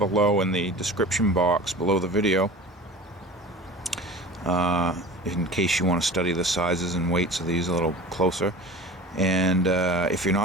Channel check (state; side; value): normal; both; correlation 0.38